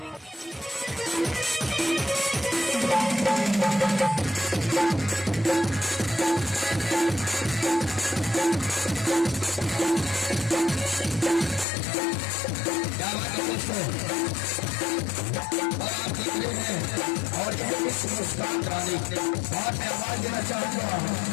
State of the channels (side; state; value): right; drops out; at 11.7 s